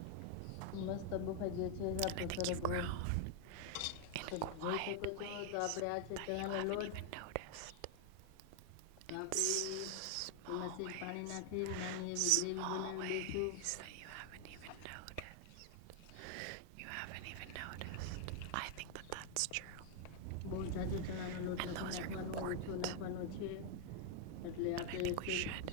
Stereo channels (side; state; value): both; different; correlation 0.00